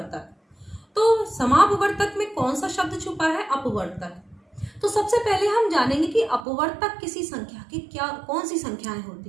तो समापवर्तक में कौन सा शब्द छुपा है? अपवर्तक। तो सबसे पहले हम जानेंगे कि अपवर्तक किसी संख्या की कौन सी संख्याएं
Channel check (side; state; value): left; drops out; at 6.5 s